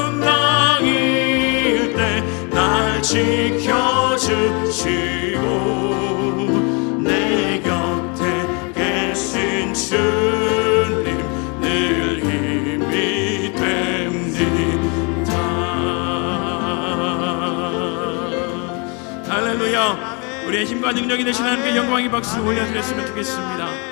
날 지켜주시고 내 곁에 계신 주님 늘 힘이 됩니다. 할렐루야. 우리의 힘과 능력이 되신 하나님께 영광의 박수 올려드렸으면 좋겠습니다.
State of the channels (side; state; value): right; quieter; 32.9 dB